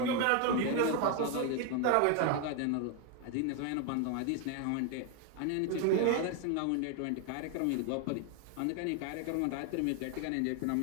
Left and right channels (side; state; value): both; different; correlation 0.01